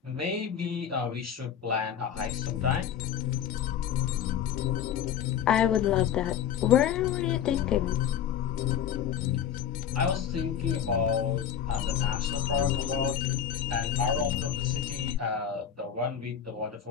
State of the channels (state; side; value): quieter; right; 8.9 dB